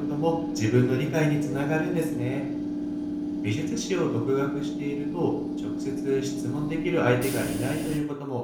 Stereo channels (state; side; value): identical; both; correlation 1.00